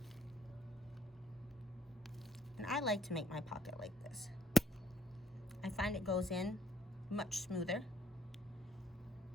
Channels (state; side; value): normal; both; correlation 0.69